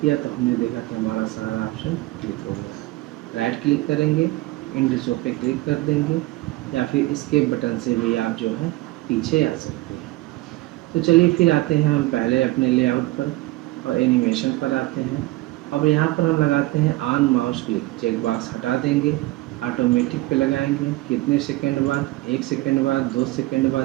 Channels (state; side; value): quieter; left; 19.2 dB